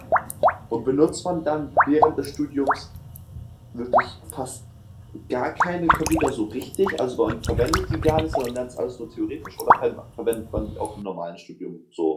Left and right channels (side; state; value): both; identical; correlation 1.00